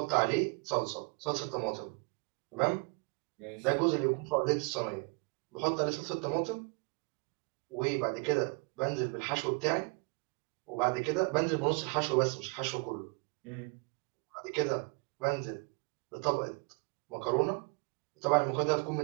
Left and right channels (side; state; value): left; quieter; 32.9 dB